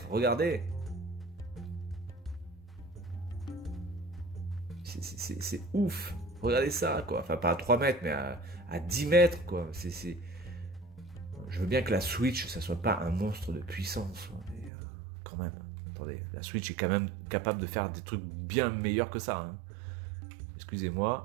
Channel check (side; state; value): left; drops out; at 14.7 s